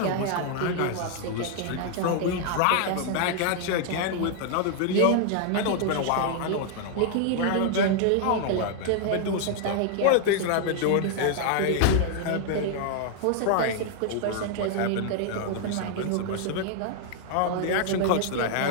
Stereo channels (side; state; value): both; different; correlation 0.00